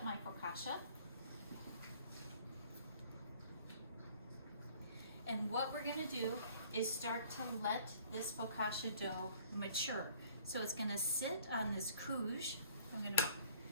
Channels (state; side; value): inverted; both; correlation -0.55